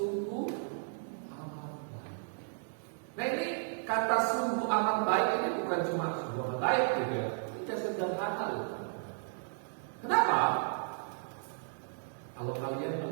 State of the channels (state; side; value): silent; left; digital silence